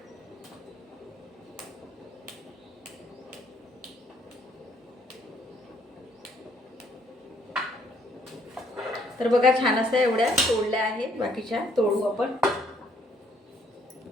तर बघा, छान असं एवढ्या तोडल्या आहेत. बाकीच्या तोडू आपण.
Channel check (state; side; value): normal; both; correlation 0.67